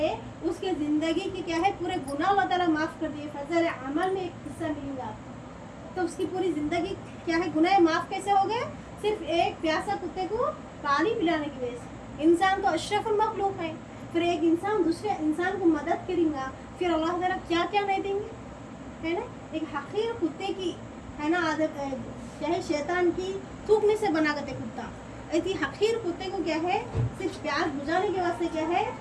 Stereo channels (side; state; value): both; identical; correlation 1.00